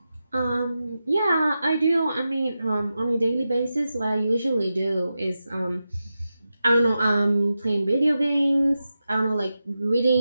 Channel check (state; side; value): inverted; both; correlation -0.91